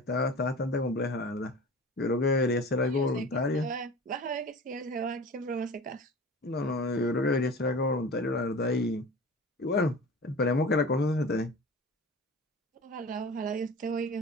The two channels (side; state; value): both; normal; correlation 0.37